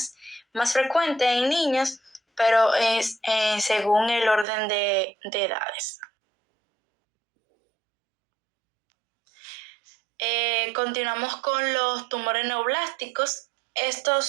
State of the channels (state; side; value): drops out; left; at 4.5 s